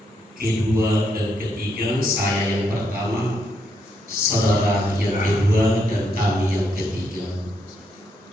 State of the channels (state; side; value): normal; both; correlation 0.77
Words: kedua dan ketiga, saya yang pertama, saudara yang kedua, dan kami yang ketiga.